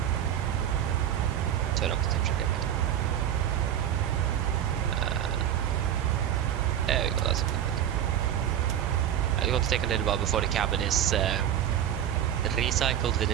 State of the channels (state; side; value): quieter; left; 10.3 dB